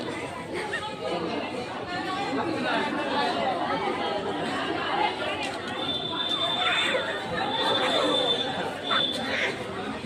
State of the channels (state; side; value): identical; both; correlation 1.00